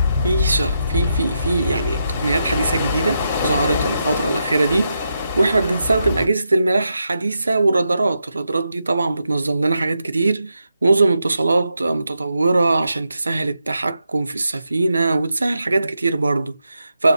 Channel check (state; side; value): inverted; both; correlation -0.84